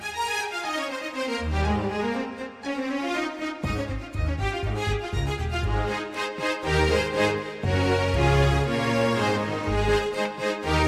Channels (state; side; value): identical; both; correlation 1.00